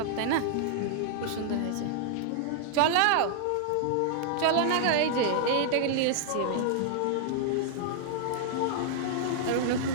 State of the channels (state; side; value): different; both; correlation -0.01